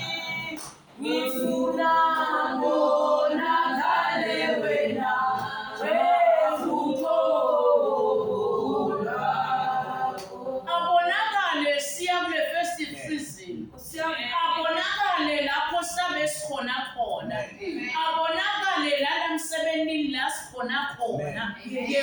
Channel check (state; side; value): identical; both; correlation 1.00